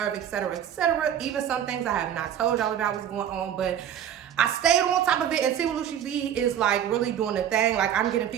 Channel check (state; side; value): quieter; left; 9.8 dB